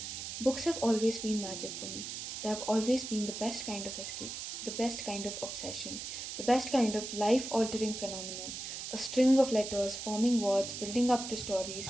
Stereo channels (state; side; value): noise; right; hiss, 7 dB below the sound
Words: Books have always been magic for me. They have always been the best kind of escape, the best kind of obsession, the best kind of life altering phenomenon. A string of letters forming words building up to stories